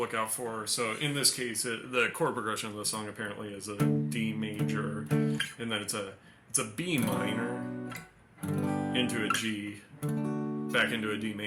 out for. So in this case, the chord progression of the song apparently is a D major, and then it's a B minor into a G, back into a D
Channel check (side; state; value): both; identical; correlation 1.00